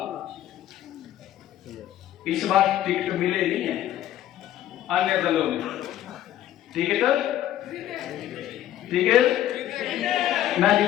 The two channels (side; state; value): right; quieter; 12.4 dB